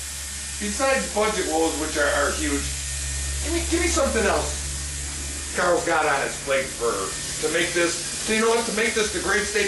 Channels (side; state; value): both; identical; correlation 1.00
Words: besides budget woes, which are huge, give me something else Carl's got on his plate to make this, to make this the great